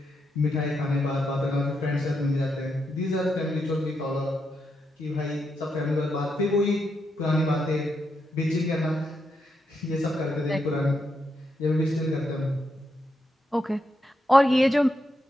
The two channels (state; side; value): normal; both; correlation 0.82